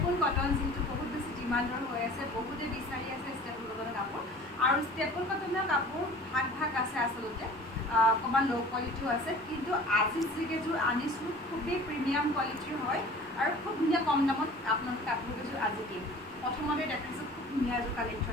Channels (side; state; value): both; normal; correlation 0.44